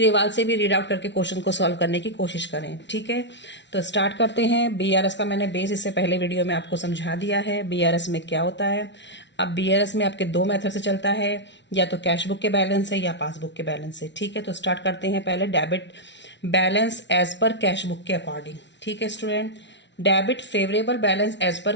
से भी रीड आउट करके क्वेश्चन को सॉल्व करने की कोशिश करें। ठीक है, तो स्टार्ट करते हैं। बीआरएस का मैंने बेस इससे पहले वीडियो में आपको समझा दिया है, बीआरएस में क्या होता है। अब बीआरएस में आपके दो मेथड से चलता है, या तो कैश बुक के बैलेंस है या पासबुक के बैलेंस है। ठीक है, तो स्टार्ट करते हैं पहले debit balance as per cash book के अकॉर्डिंग। ठीक है student, debit favourable balance as per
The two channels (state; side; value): late; right; 0.52 ms